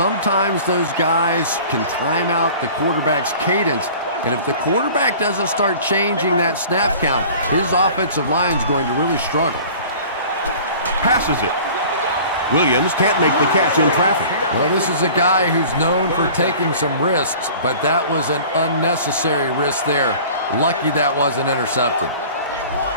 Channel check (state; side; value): inverted; both; correlation -0.44